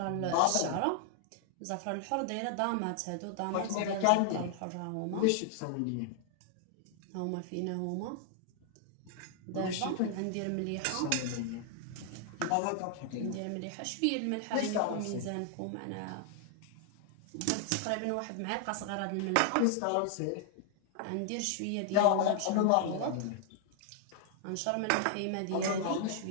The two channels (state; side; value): different; both; correlation 0.00